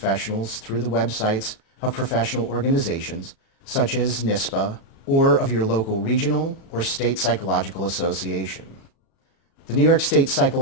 through the websites of professional organizations such as NISPA or of your local regional or state psychological association. The New York State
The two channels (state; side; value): late; right; 36 ms